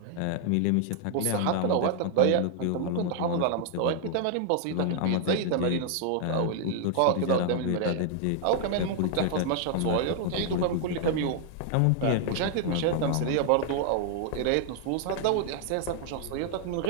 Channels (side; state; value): both; different; correlation 0.00